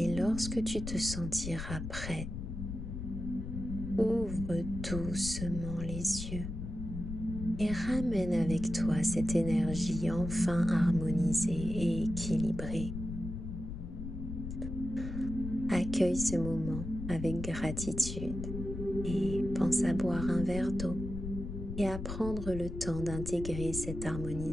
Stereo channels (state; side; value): noise; left; rumble, 6 dB below the sound